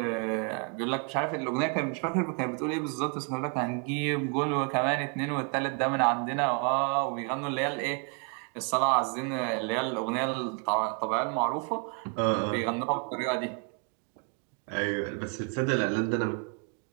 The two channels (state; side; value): quieter; left; 37.9 dB